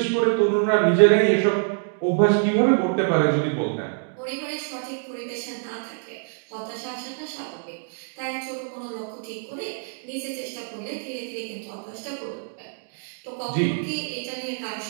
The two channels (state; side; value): silent; left; digital silence